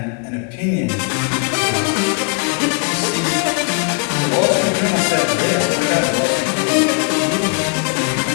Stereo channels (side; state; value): right; quieter; 38.4 dB